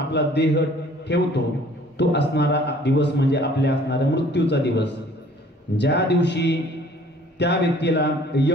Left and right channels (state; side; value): normal; both; correlation 0.54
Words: देह ठेवतो तो असणारा दिवस म्हणजे आपल्या असणाऱ्या मृत्यूचा दिवस. ज्या दिवशी त्या व्यक्तीला